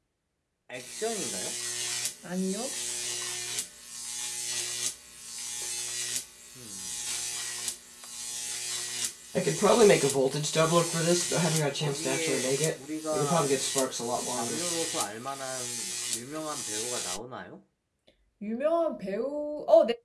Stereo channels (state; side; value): identical; both; correlation 1.00